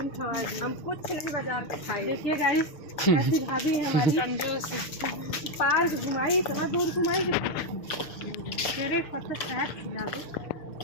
खवाए दिए। हम कुछ नहीं बाजार पे खाई। देखिए गाइस ऐसी भाभी है हमारी कंजूस। पार्क घुमाई, इतना दूर घुमाई कि मेरे एक पत्ता चाट खिला दो।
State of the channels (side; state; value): right; late; 6.6 ms